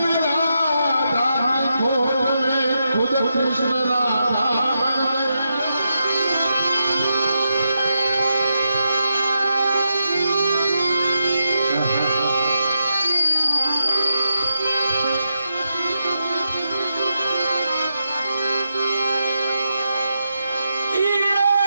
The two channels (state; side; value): inverted; both; correlation -0.86